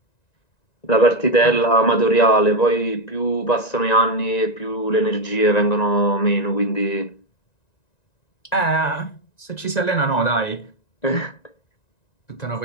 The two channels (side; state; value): right; late; 1.9 ms